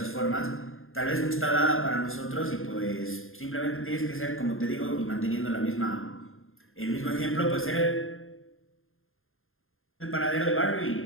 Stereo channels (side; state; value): right; late; 0.60 ms